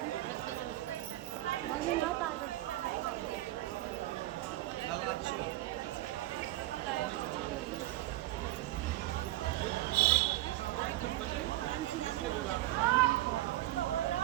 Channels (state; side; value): quieter; left; 16.4 dB